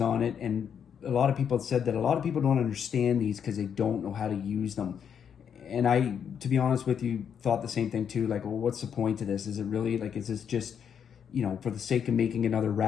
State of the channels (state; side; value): quieter; right; 7.9 dB